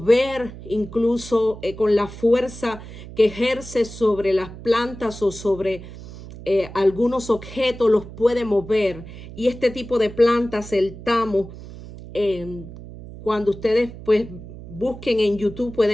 incluso con la fuerza que ejerce sobre las plantas o sobre algunos objetos, los puede mover. Y este tipo de plantas, el tamo, cuando ustedes pues busquen en YouTube,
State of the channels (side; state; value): right; noise; hum, 14 dB below the sound